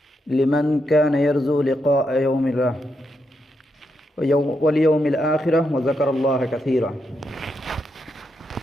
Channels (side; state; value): both; normal; correlation 0.82